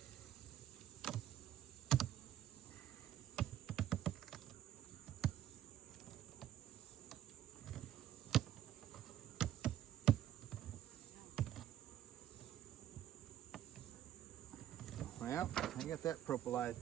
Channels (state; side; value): quieter; left; 11.9 dB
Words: Well, I got that propolized